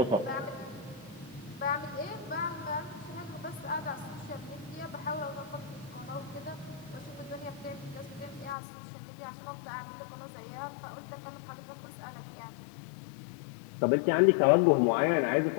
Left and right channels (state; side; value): drops out; right; at 8.6 s